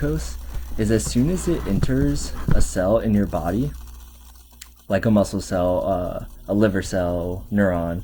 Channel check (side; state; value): both; identical; correlation 1.00